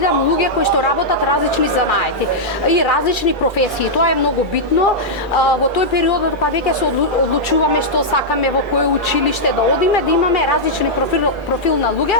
луѓе кои што работат различни занаети и различни професии. Тоа е многу битно. Во тој период кога веќе се одлучуваме што сакаме во кој училиште да одиме, да имаме различни профил на луѓе,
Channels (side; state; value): both; normal; correlation -0.08